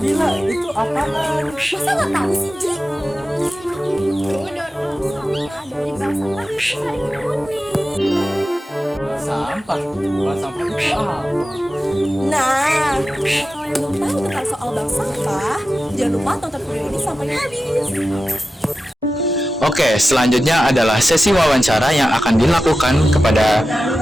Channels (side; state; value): both; normal; correlation 0.93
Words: itu apaan? Masa nggak tahu sih, Ji? Itu daur ulang sampah dari bank sampah Sari Kuning. Sampah. Bukan sampah itu apa? Nah, kalau yang belum tahu tentang soal bank sampah, jangan lupa tonton video ini sampai habis. Oke, selanjutnya adalah sesi wawancara yang akan dilakukan kepada